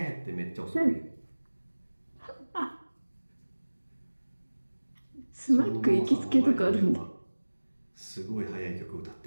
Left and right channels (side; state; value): both; inverted; correlation -1.00